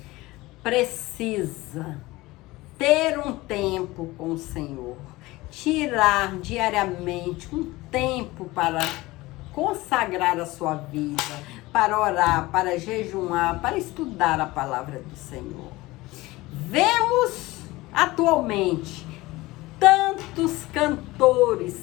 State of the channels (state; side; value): quieter; right; 19.9 dB